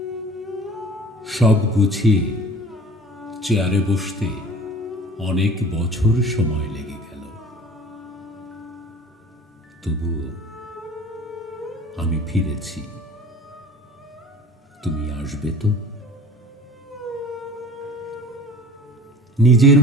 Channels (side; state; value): both; normal; correlation 0.43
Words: সব গুছিয়ে চেয়ারে বসতে অনেক বছর সময় লেগে গেল। তবুও আমি ফিরেছি, তুমি আসবে তো? নিজের